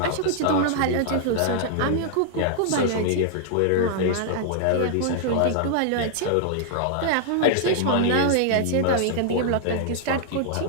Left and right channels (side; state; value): both; different; correlation -0.01